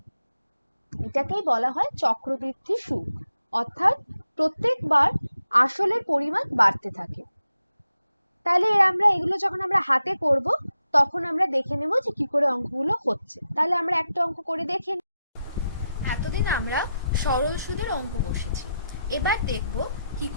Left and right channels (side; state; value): both; inverted; correlation -0.87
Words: এটাকেই বলা হয় চক্রবৃদ্ধি সুদ, অর্থাৎ প্রত্যেকবার আসলের পরিমাণ বাড়তে থাকে। তাহলে আমরা এগুলো যখন আমরা হাতে করব তখন আমরা দেখে নেব যে কি করে অঙ্কগুলো হচ্ছে। তাহলে আমরা একটা অঙ্ক করে দেখে নিই। এতদিন আমরা সরল সুদের অঙ্ক বসেছি, এবার দেখব কি